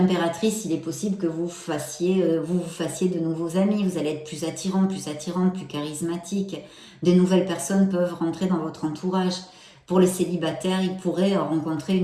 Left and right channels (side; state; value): both; identical; correlation 1.00